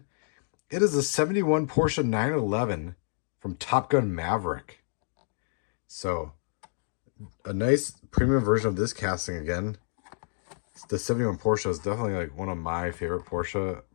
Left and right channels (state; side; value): silent; right; digital silence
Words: It is a 71 Porsche 911 from Top Gun Maverick. So a nice premium version of this casting again. The 71 Porsche is definitely like one of my favorite Porsche